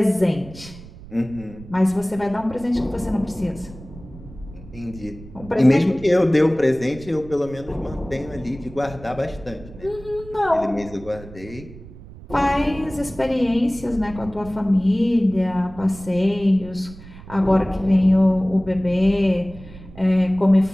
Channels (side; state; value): right; noise; rumble, 17 dB below the sound